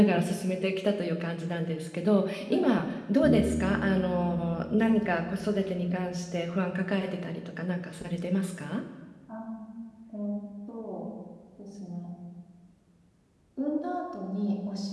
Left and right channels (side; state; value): both; identical; correlation 1.00